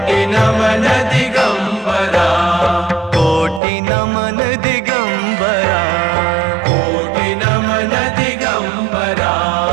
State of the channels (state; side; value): drops out; left; at 3.6 s